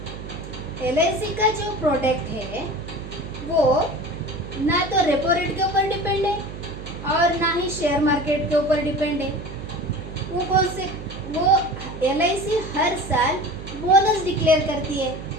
LIC का जो प्रोडक्ट है वो ना तो रेपो रेट के ऊपर डिपेंड है और ना ही शेयर मार्केट के ऊपर डिपेंड है। वो LIC हर साल बोनस डिक्लेयर करती है।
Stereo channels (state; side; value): noise; right; hum, 11 dB below the sound